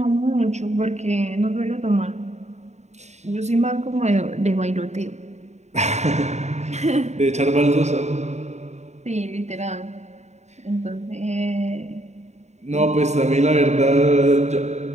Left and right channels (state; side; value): late; left; 0.33 ms